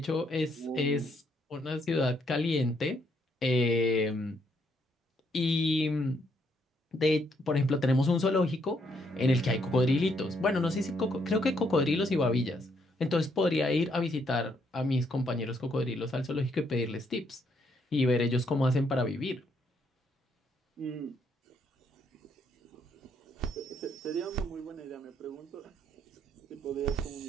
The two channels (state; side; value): normal; both; correlation 0.73